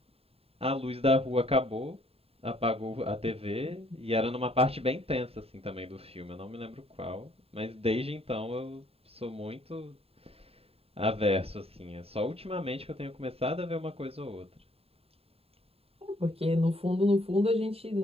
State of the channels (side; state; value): left; late; 0.28 ms